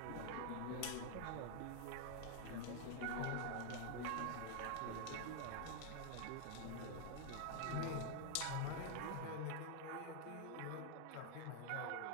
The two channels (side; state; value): both; different; correlation 0.00